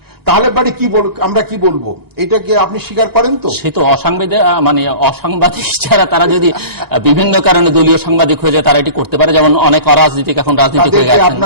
তাহলে পরে আমরা কি বলবো? এটাকে আপনি স্বীকার করেন? তো সে তো অসাংবাদিক যারা, তারা যদি বিভিন্ন কারণে দলীয় সাংবাদিক হয়ে যায়, তারা এটি করতে পারে। যেমন অনেক অরাজনীতিক এখন রাজনীতি হয়ে গেছেন,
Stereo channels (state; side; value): late; right; 1.9 ms